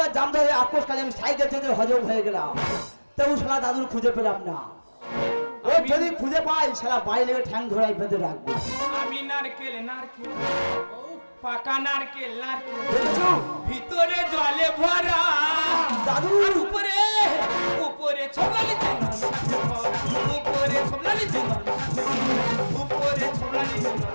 আক্রোশ কালে আমি সাইকেল থেকে হজম হয়ে গেলাম, তবু শালা দাদুর খুঁজে পেলাম না। ও যদি খুঁজে পাই সারা বাড়ি লেগে ঠ্যাং ধরাই বেঁধে রাখবো। আমি নারকেল নারকেল পাকা নারকেল নারকেল দেখেছো ভিতরে জলে ভরা দাদু আর উপরে উপরে ছোবলালি জল উপরে ছোবলালি জল উপরে ছোবলালি জল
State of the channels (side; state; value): both; inverted; correlation -1.00